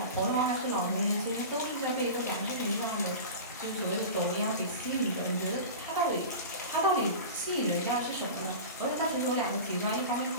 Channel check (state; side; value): inverted; both; correlation -0.31